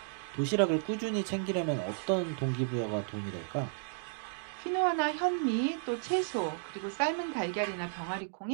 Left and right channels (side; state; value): left; silent; digital silence